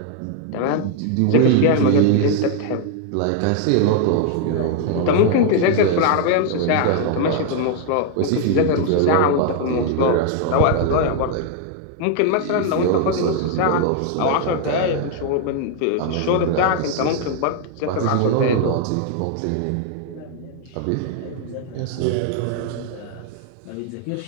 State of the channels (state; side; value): different; both; correlation 0.00